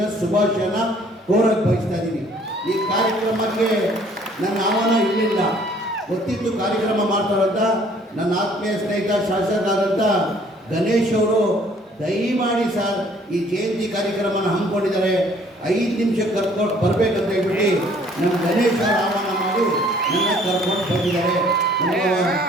ಶುಭಾಶಯನ ಕೋರಕ್ಕೆ ಬಯಸ್ತಾ ಇದ್ದೀನಿ. ಈ ಕಾರ್ಯಕ್ರಮಕ್ಕೆ ನನ್ನ ಆಹ್ವಾನ ಇರಲಿಲ್ಲ, ಗೊತ್ತಿತ್ತು ಕಾರ್ಯಕ್ರಮ ಮಾಡ್ತಾರಂತ. ನನ್ನ ಆತ್ಮೀಯ ಸ್ನೇಹಿತ ಶಾಸಕರಾದಂಥ ಗಣೇಶ್ ಅವರು ದಯಮಾಡಿ ಸರ್ ಈ ಜಯಂತಿ ಕಾರ್ಯಕ್ರಮನ ಹಮ್ಮಿಕೊಂಡಿದ್ದಾರೆ, 5 ನಿಮಿಷಕ್ಕೆ ಕರ್ಕೊಂಡು ಬರಬೇಕಂತ ಹೇಳ್ಬಿಟ್ಟು ನಮ್ಮ ಗಣೇಶ ಆಹ್ವಾನ ಮಾಡಿ ನನ್ನ ಕರ್ಕೊಂಡು ಬಂದಿದ್ದಾರೆ.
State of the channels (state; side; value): normal; both; correlation 0.58